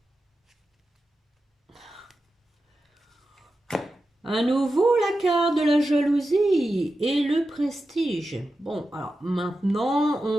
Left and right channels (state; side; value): normal; both; correlation 0.91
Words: À nouveau, la carte de la jalousie et le prestige. Bon, alors maintenant,